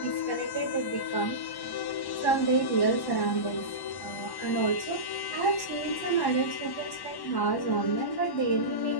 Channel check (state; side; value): late; right; 1.1 ms